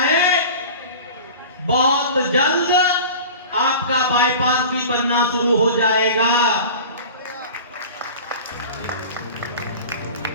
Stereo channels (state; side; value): inverted; both; correlation -0.37